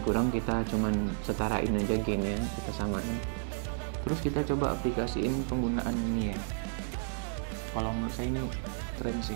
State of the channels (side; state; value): left; silent; digital silence